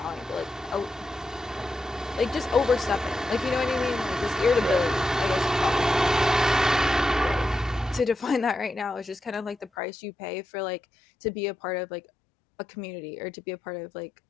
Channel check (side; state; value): right; drops out; at 9.7 s